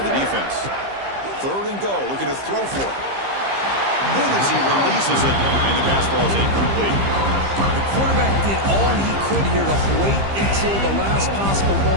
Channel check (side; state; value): left; late; 15 ms